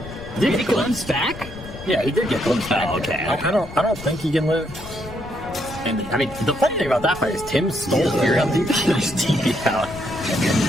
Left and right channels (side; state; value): left; noise; rumble, 15 dB below the sound